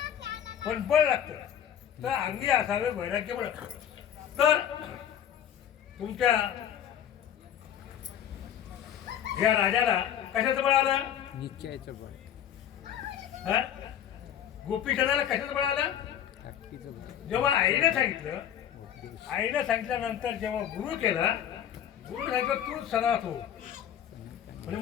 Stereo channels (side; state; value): right; quieter; 9.8 dB